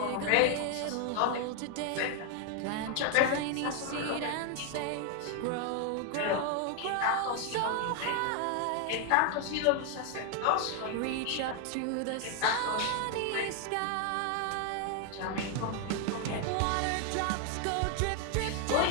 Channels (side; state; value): both; different; correlation 0.00